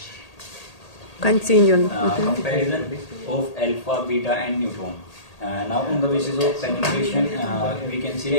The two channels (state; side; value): late; right; 1.8 ms